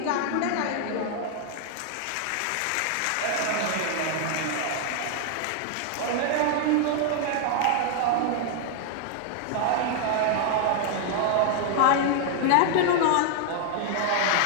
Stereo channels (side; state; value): both; different; correlation 0.00